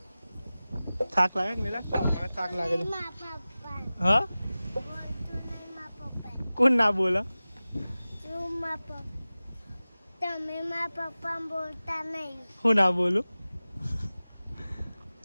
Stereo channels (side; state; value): both; inverted; correlation -0.97